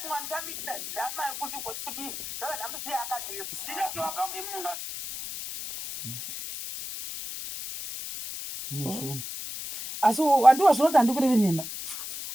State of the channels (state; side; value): noise; left; hiss, 8 dB below the sound